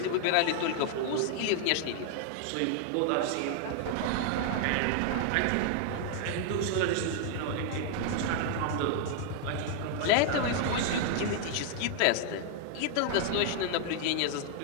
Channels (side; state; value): both; different; correlation 0.00